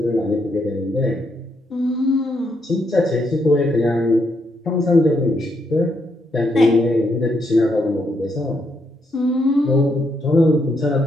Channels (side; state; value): both; normal; correlation 0.77